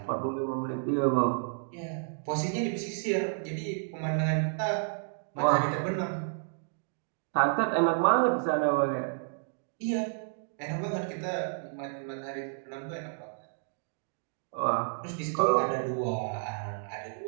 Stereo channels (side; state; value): left; silent; digital silence